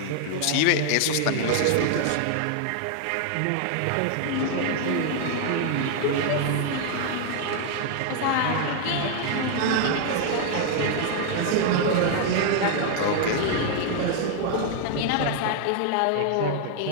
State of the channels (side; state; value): both; different; correlation 0.00